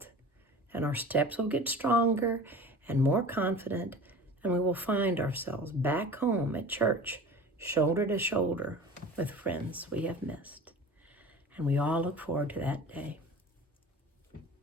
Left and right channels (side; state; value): both; normal; correlation 0.38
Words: and our steps will get stronger and more confident, and we will find ourselves back home at church, shoulder to shoulder with friends we have missed. And we all look forward to that day.